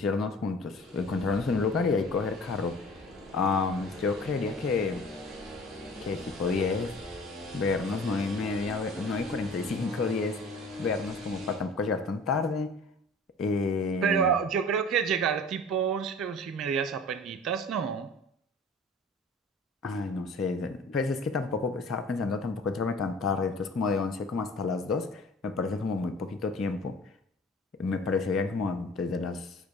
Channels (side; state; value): both; normal; correlation 0.45